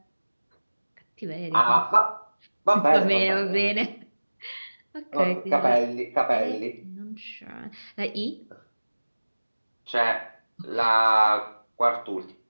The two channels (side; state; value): both; inverted; correlation -1.00